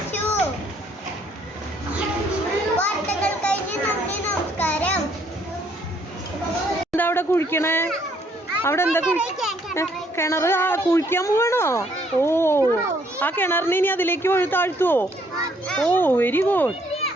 വാർത്തകൾ കഴിഞ്ഞ് നന്ദി, നമസ്കാരം. എന്താ അവിടെ കുഴിക്കണേ? അവിടെ എന്താ കിണറ്? കുഴിക്കാൻ പോവാണോ? ഓ, ആ കിണറിന് ഇനി അതിലേക്ക് വഴി താഴ്ത്തുവോ? ഓ, വെരി ഗുഡ്.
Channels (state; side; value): normal; both; correlation 0.66